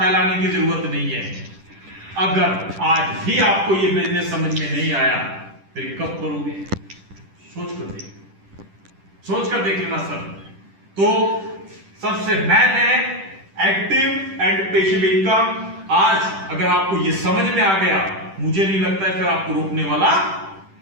की जरूरत नहीं है। अगर आज भी आपको ये बिजनेस समझ में नहीं आया फिर कब करोगे? सोच कर देख लेना सर। तो सबसे मेन है एक्टिव एंड पैसिव इनकम। आज अगर आपको ये समझ में आ गया, मुझे नहीं लगता है फिर आपको रोकने वाला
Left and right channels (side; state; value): left; late; 10 ms